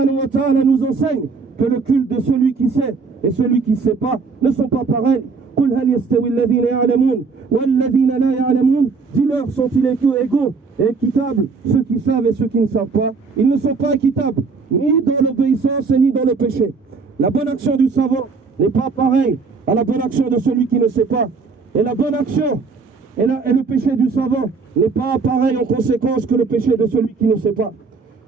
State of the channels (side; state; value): left; quieter; 4.7 dB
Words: wa ta'ala nous enseigne que le culte de celui qui sait et celui qui ne sait pas ne sont pas pareils. قل هل يستوي الذين يعلمون والذين لا يعلمون. Dis-leur, sont-ils égaux et équitables, ceux qui savent et ceux qui ne savent pas? Ils ne sont pas équitables, ni dans l'obéissance et ni dans le péché. La bonne action du savant n'est pas pareille à la bonne action de celui qui ne sait pas. Et la bonne action et le péché du savant n'est pas pareil en conséquence que le péché de celui qui ne sait pas.